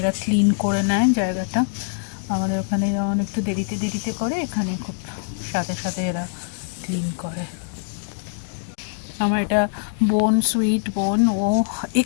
ক্লিন করে নেয় জায়গাটা। আমাদের ওখানে যেমন একটু দেরিতে করে, এখানে খুব সাথে সাথে এরা ক্লিন করে। আমার এটা বোন, সুইট বোন, ও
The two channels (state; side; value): silent; right; digital silence